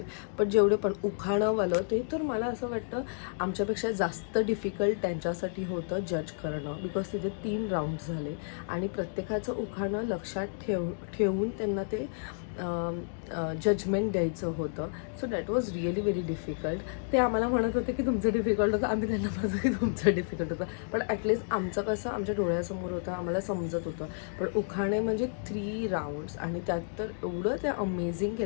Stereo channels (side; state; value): right; silent; digital silence